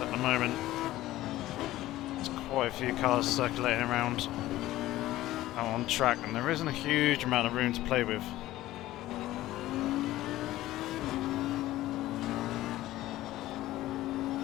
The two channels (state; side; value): quieter; right; 15.7 dB